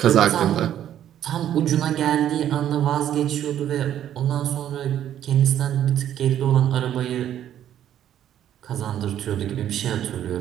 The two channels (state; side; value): quieter; left; 10.9 dB